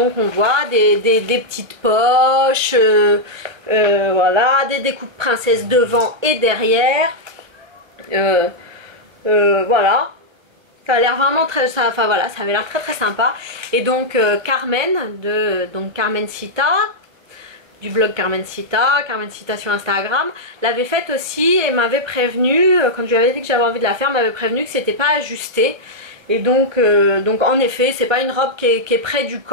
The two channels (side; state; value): left; late; 1.1 ms